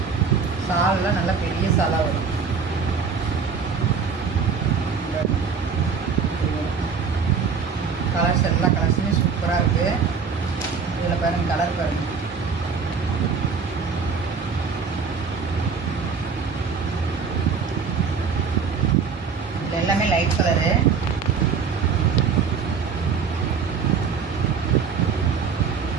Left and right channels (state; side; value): quieter; left; 5.7 dB